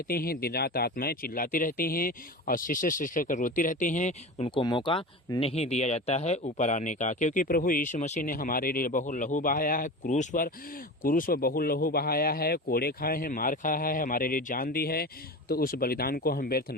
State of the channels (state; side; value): normal; both; correlation 0.29